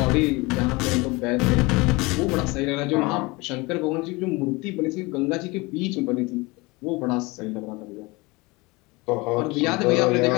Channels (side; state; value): right; quieter; 24.4 dB